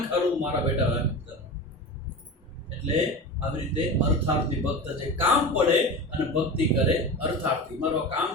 ખારું મારા બેટા. એટલે આવી રીતે અર્થાર્થી ભક્ત છે. કામ પડે અને ભક્તિ કરે. અર્થાર્થી મારો કામ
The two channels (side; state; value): both; normal; correlation 0.28